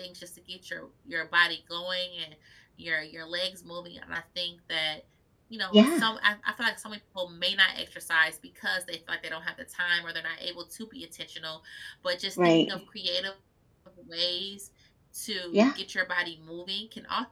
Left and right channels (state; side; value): identical; both; correlation 1.00